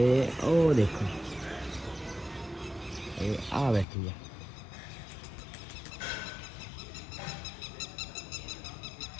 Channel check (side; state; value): right; drops out; at 3.9 s